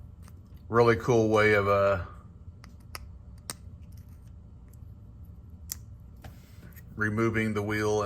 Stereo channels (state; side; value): identical; both; correlation 1.00